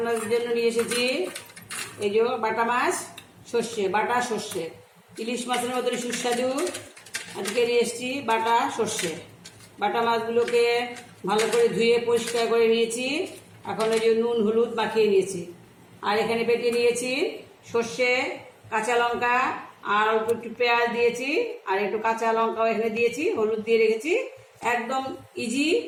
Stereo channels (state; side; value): identical; both; correlation 1.00